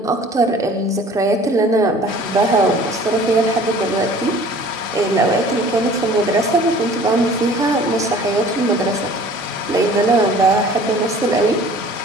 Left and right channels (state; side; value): normal; both; correlation 0.49